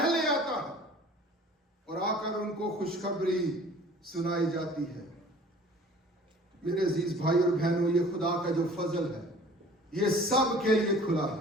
آتا ہے اور آ کر ان کو خوشخبری سنائی جاتی ہے. میرے عزیز بھائی اور بہنوں, یہ خدا کا جو فضل ہے یہ سب کے لیے کھلا ہے.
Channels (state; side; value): normal; both; correlation 0.48